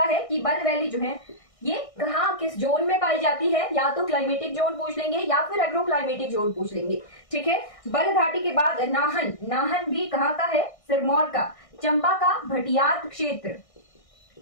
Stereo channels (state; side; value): late; right; 1.6 ms